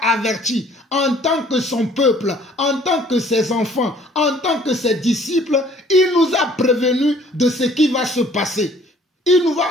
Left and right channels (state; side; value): normal; both; correlation 0.56